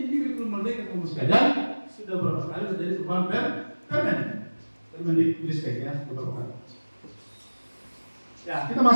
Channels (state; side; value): inverted; both; correlation -1.00